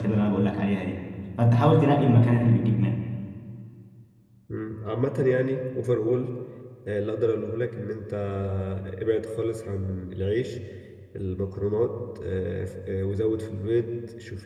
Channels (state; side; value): identical; both; correlation 1.00